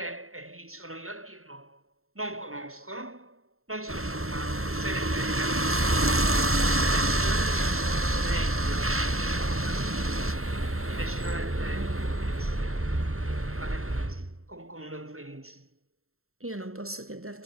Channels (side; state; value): left; late; 0.63 ms